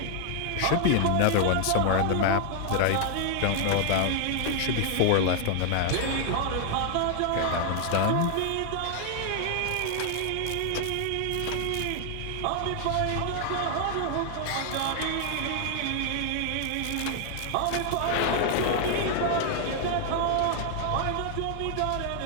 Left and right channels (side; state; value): both; different; correlation 0.00